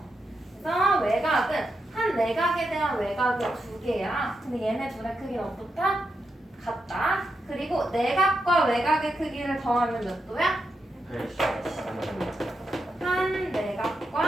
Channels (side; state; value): both; normal; correlation 0.85